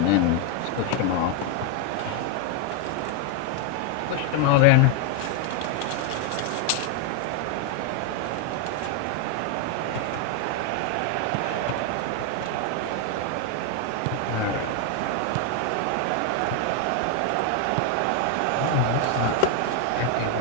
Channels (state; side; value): different; both; correlation 0.01